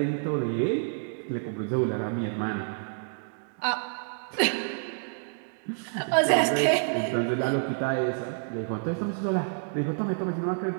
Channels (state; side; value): silent; left; digital silence